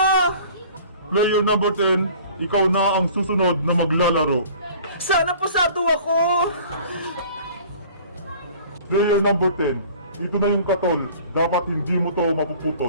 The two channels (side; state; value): both; inverted; correlation -0.48